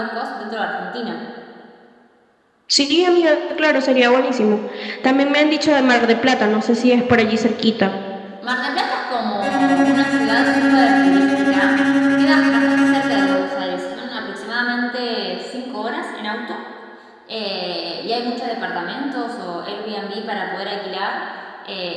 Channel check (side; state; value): both; identical; correlation 1.00